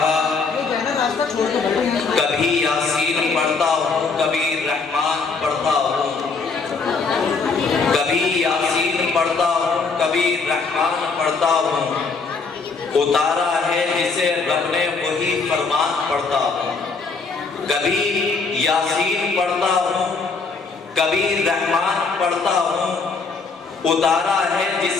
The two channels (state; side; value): quieter; right; 4.5 dB